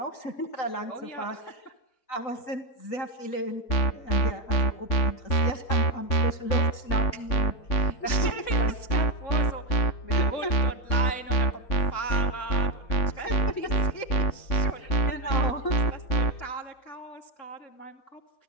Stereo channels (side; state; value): right; late; 3.6 ms